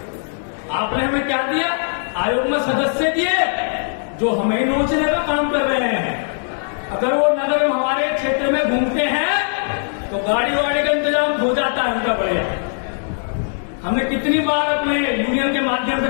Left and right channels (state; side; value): silent; right; digital silence